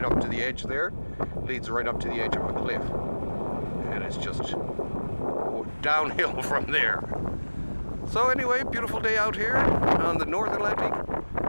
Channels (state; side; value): inverted; both; correlation -1.00